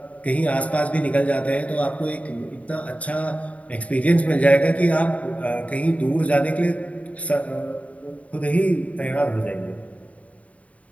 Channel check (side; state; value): right; late; 0.067 ms